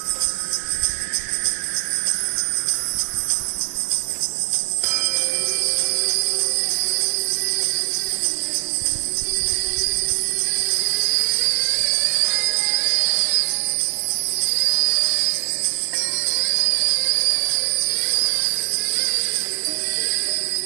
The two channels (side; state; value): left; silent; digital silence